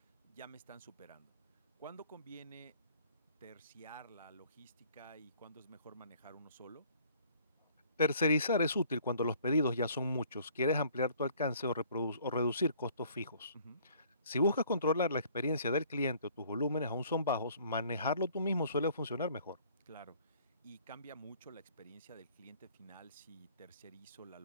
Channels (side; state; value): both; inverted; correlation -0.57